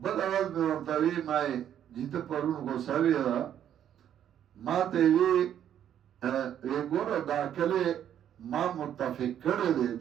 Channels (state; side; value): quieter; left; 10.1 dB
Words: بل اول مې ورته ویې ما یې چې ته پرون غوسه وې ما ته یې ویې ګوره دا کلی ما متفق کړی دی